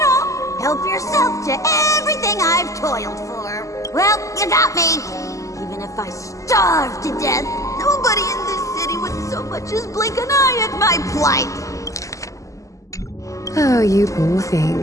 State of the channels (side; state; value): right; late; 0.16 ms